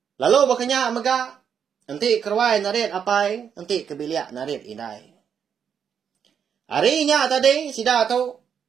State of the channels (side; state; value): left; quieter; 7.6 dB